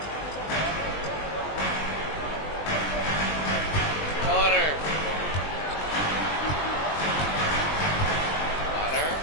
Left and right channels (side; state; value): right; late; 20 ms